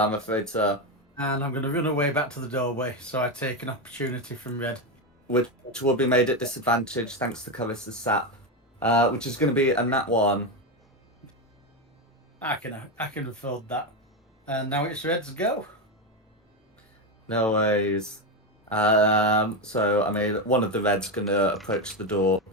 afraid so. And I'm going to run away back to the doorway, so I take an opportunity from red. Which will be made at disadvantage thanks to Caryssa's sap. Which is going to be a nat 1. I can afford that. And now it's red's go. No worries. So I mean, one of the red's gonna approach the door,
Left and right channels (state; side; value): normal; both; correlation 0.11